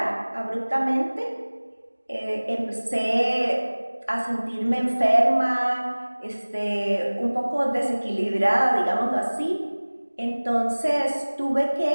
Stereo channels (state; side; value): inverted; both; correlation -1.00